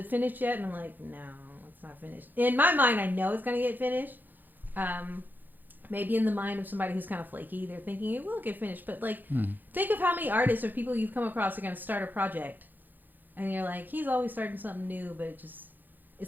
finished yet? And I'm like, no, it's not finished. In my mind, I know it's gonna get finished. maybe in the mind of somebody who's kind of flaky, they're thinking it will get finished. But like, think of how many artists or people you've come across are going to start a project, and you're like, he's always starting something new, but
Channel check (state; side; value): late; left; 0.087 ms